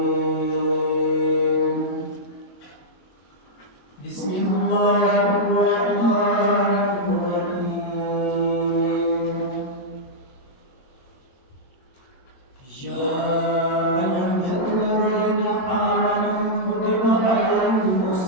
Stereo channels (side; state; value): right; late; 22 ms